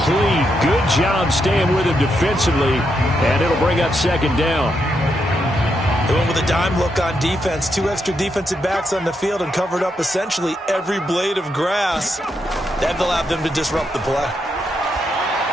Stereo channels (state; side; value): normal; both; correlation 0.81